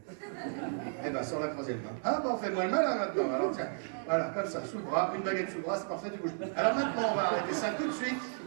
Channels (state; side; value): silent; left; 55 dB below the other